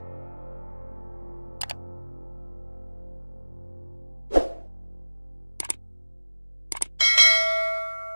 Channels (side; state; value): both; inverted; correlation -1.00